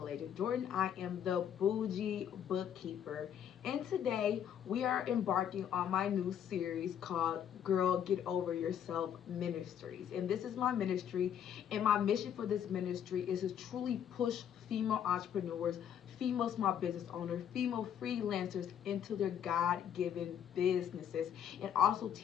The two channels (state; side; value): quieter; right; 9.2 dB